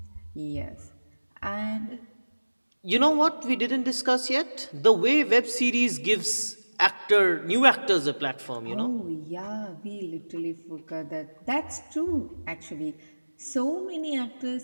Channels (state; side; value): inverted; both; correlation -1.00